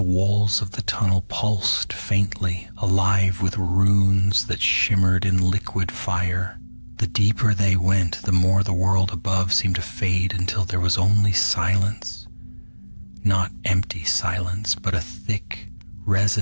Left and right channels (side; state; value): both; inverted; correlation -1.00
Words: walls of the tunnel pulsed faintly, alive with runes that shimmered in liquid fire. The deeper they went, the more the world above seemed to fade until there was only silence. Not empty silence, but a thick,